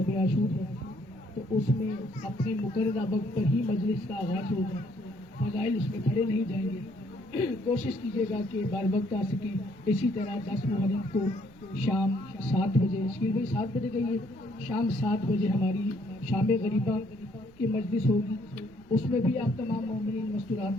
عاشور ہے تو اس میں اپنے مقررہ وقت پر ہی مجلس کا آغاز ہوگا، فضائل اس میں پڑھے نہیں جائیں گے۔ کوشش کیجیے گا کہ بر وقت آ سکیں۔ اسی طرح 10 محرم کو شام 7 بجے، شکیل بھائی 7 بجے کہیے، شام 7 بجے ہماری شام غریبہ کی مجلس ہوگی، اس میں بھی آپ تمام مومنین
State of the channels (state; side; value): noise; right; rumble, 26 dB below the sound